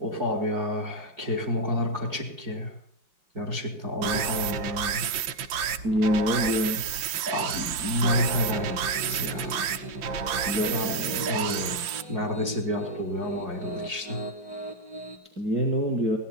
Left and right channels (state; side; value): late; left; 5.8 ms